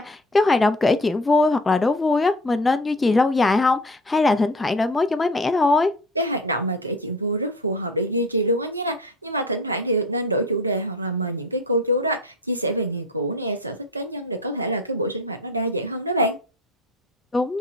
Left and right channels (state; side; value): normal; both; correlation 0.38